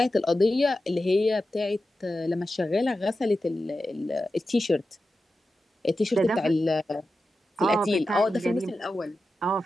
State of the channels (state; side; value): normal; both; correlation 0.92